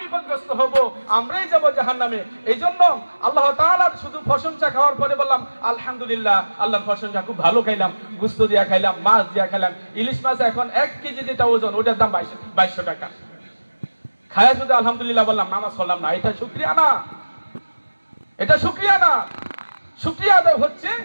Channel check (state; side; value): inverted; both; correlation -1.00